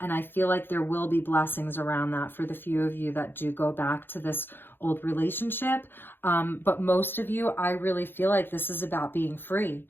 I feel like there will be blessings around that for the few of you that do go back to this old relationship. But most of you, I really feel like this is about being free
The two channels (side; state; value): right; late; 0.10 ms